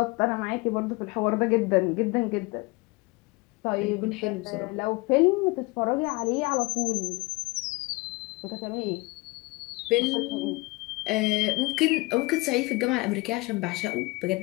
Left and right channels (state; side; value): quieter; right; 24.0 dB